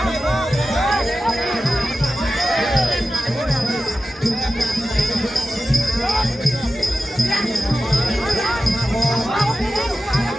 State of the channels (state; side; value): normal; both; correlation 0.93